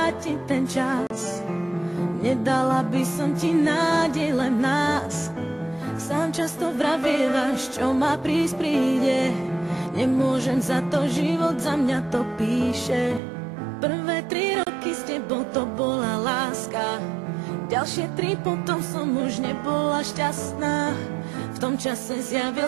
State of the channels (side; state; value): left; drops out; at 13.2 s